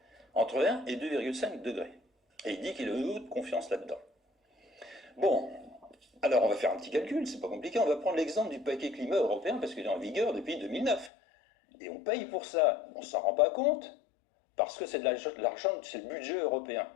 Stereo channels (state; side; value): drops out; right; at 11.1 s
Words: Entre 1 et 2,5 degrés. Et il dit qu'il a eu de confiance là-dedans. Bon, alors on va faire un petit calcul, c'est pas compliqué. On va prendre l'exemple du paquet climat européen parce qu'il est en vigueur depuis 2009. Et on paye pour ça. On ne s'en rend pas compte parce que c'est de l'argent, c'est le budget européen.